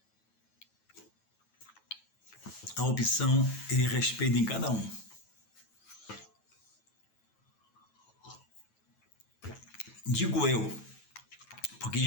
A opção ele respeita em cada um. Digo eu, porque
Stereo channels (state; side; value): late; right; 9.2 ms